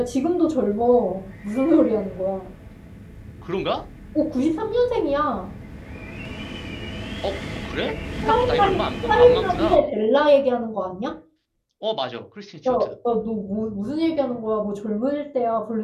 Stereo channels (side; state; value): both; identical; correlation 1.00